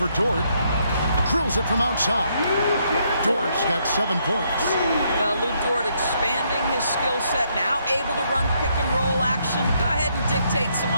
Dort. Drills it from outside. Dort's got 7 points. Well, Lou Dort expanding his skill set, now able to run pick and roll action. Go ahead and dictate some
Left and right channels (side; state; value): both; inverted; correlation -0.73